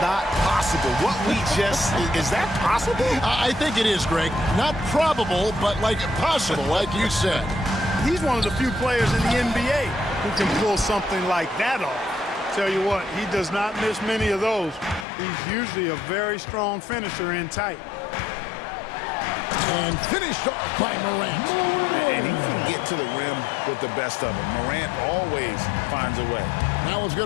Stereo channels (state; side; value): drops out; right; at 15.1 s